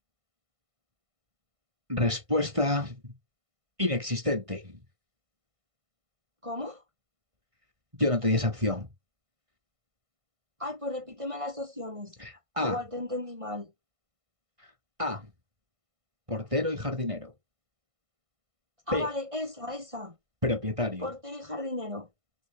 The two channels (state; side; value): late; left; 1.5 ms